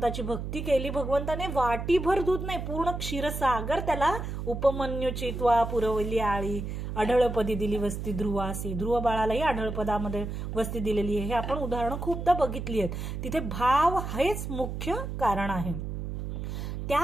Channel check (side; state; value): right; noise; hum, 5 dB below the sound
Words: भक्ती केली. भगवंताने वाटीभर दूध नाही, पूर्ण क्षीरसागर त्याला उपमन्यूची त्वा पुरवली आळी, अढळपदी दिली वस्ती ध्रुवासी. ध्रुव बाळालाही अढळपदामध्ये वस्ती दिलेली आहे. हे आपण उदाहरणं खूपदा बघितली आहेत. तिथे भाव हेच मुख्य कारण आहे.